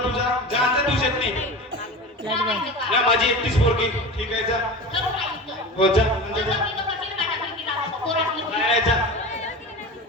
तुझा जायचं तुझ्यात नाही. या माझी एकटीच पोरगी ठीक आहे जा. हो जा म्हणजे जा. नाही, जा.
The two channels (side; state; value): both; normal; correlation 0.31